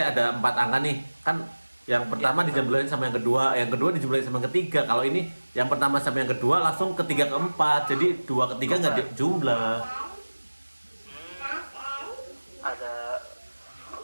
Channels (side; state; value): both; inverted; correlation -1.00